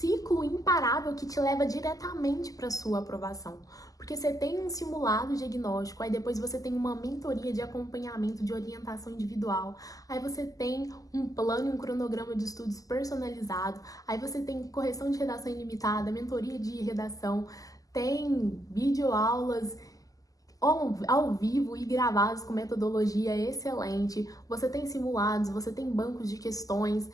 imparável que te leva diretamente para sua aprovação. Porque você tem um simulado diagnóstico, aí depois você tem uma mentoria de acompanhamento, de orientação individual, aí você tem um plano e um cronograma de estudos personalizado, aí você tem correção de redação ilimitada, mentoria de redação, tem videoaulas ao vivo e gravados com metodologia excelente, você tem simulados, você tem bancos de questões,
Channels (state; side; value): late; right; 0.17 ms